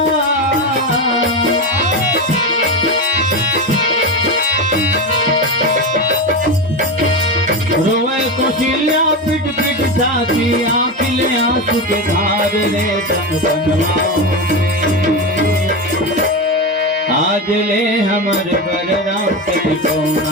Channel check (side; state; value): both; normal; correlation 0.18